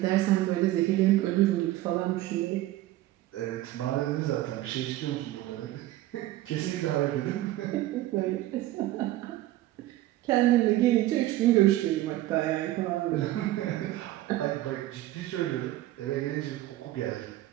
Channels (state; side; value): quieter; left; 15.6 dB